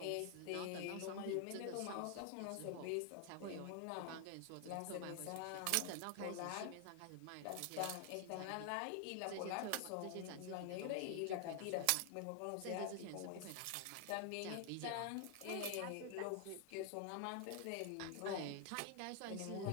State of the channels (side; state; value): both; different; correlation 0.00